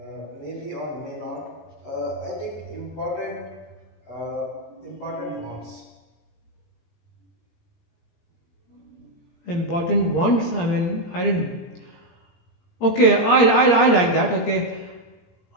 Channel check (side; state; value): right; late; 17 ms